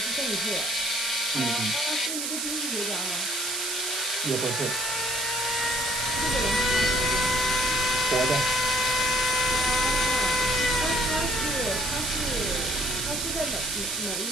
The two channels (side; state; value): right; noise; hiss, 2 dB below the sound